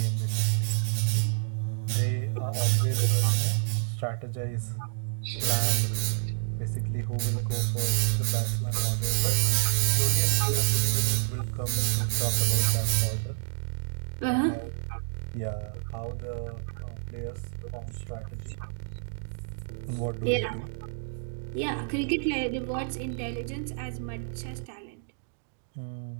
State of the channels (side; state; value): left; silent; digital silence